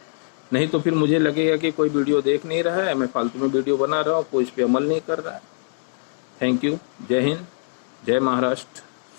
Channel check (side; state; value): right; silent; digital silence